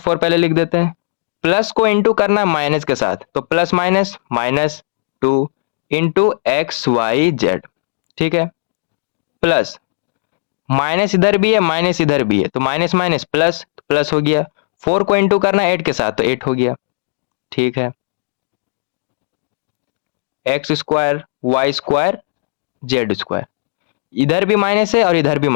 पहले लिख देते हैं, प्लस को इंटू करना है माइनस के साथ तो plus minus -2 into x y z. ठीक है, प्लस माइनस इधर भी है माइनस इधर भी है तो माइनस माइनस प्लस प्लस हो गया, 4 को इंटू करना है 8 के साथ तो 8 हो गया। ठीक है, x² y² z², इधर भी माइनस है और इधर भी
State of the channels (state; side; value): silent; right; digital silence